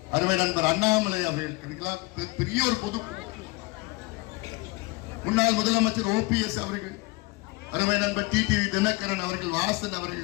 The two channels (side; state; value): right; quieter; 24.2 dB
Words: அருமை நண்பர் அண்ணாமலை அவர்களுக்கு பெரிய ஒரு பொது, முன்னாள் முதலமைச்சர் OPS அவர்கள், அருமை நண்பர் டிடிவி தினகரன் அவர்கள், வாசன்